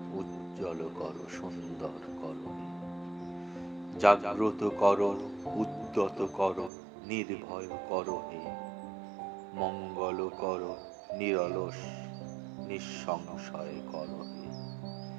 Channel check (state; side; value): drops out; left; at 6.7 s